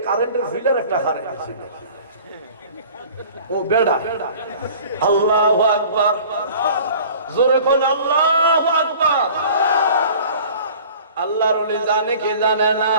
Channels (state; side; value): inverted; both; correlation -0.46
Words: কারেন্টের ফিলার একটা হারে ছিল, ও বেড়া। আল্লাহু আকবার, জোরে কোন আল্লাহু আকবার। আল্লাহর ওলি জানে কি জানে না?